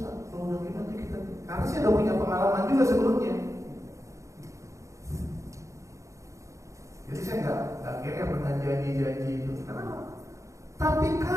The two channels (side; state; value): left; late; 0.15 ms